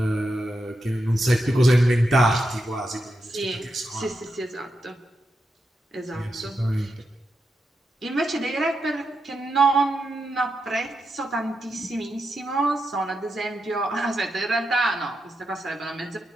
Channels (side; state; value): both; normal; correlation 0.86